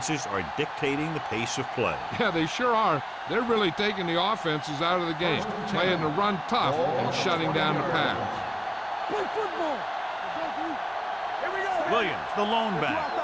are dictating the pace of play. Yeah, they sure are. They're really taking the offenses out of the game, playing the run tough and shutting down the pass. Play football. Here we go. Williams, the lone back.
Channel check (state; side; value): identical; both; correlation 1.00